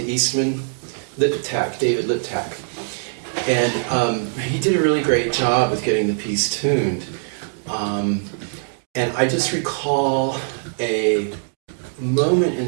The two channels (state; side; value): silent; left; digital silence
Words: Eastman, David Liptak, and he did a really great job with getting the piece tuned. And I just recall a moment in